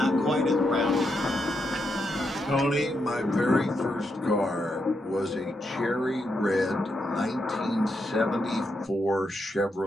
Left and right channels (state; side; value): normal; both; correlation 0.82